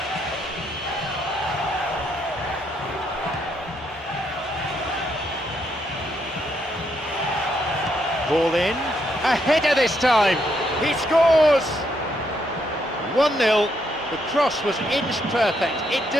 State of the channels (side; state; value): both; normal; correlation 0.76